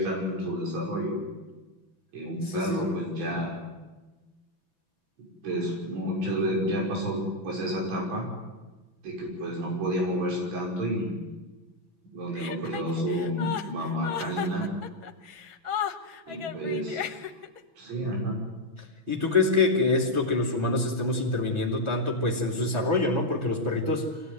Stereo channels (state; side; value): late; left; 6.0 ms